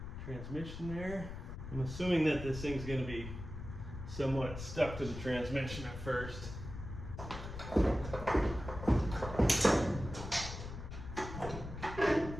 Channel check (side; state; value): left; noise; rumble, 9 dB below the sound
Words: transmission there. I'm assuming that this thing's going to be somewhat stuck to the transmission at first.